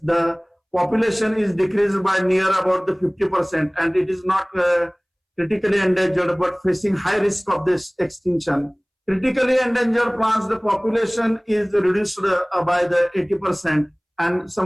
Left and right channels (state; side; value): identical; both; correlation 1.00